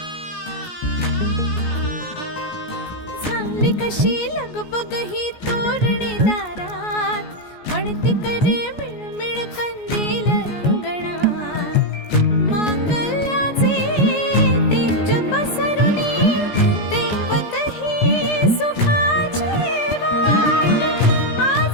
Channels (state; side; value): late; right; 17 ms